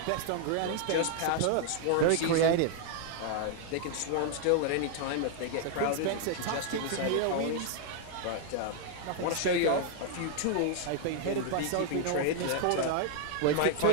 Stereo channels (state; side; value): different; both; correlation 0.00